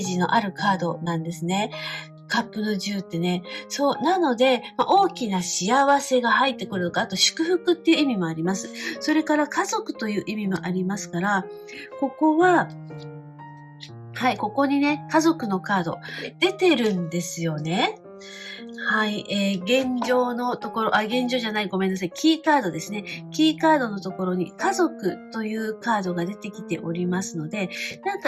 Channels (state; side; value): identical; both; correlation 1.00